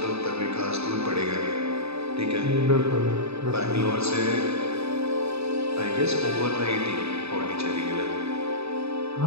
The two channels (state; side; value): late; left; 0.79 ms